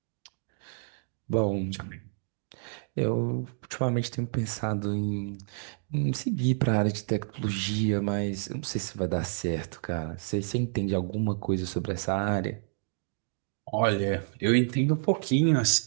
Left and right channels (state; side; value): silent; left; digital silence